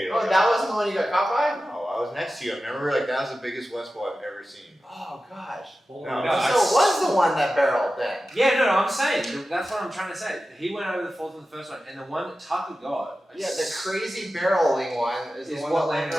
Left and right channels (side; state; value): both; normal; correlation 0.94